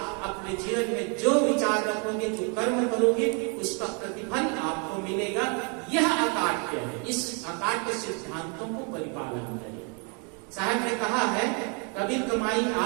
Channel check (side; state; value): left; quieter; 36.2 dB